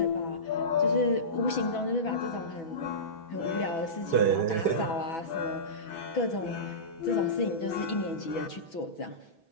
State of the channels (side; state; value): right; late; 6.1 ms